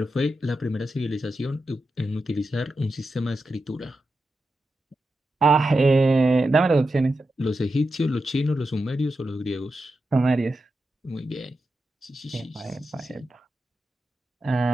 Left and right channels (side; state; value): both; normal; correlation 0.89